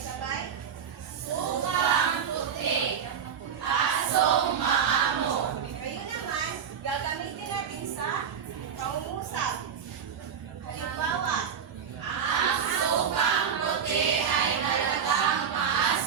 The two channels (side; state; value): left; quieter; 7.6 dB